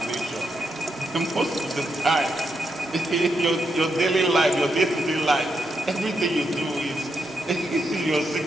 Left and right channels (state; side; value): normal; both; correlation 0.82